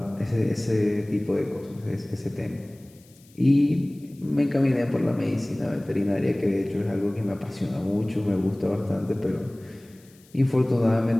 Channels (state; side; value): noise; left; hiss, 28 dB below the sound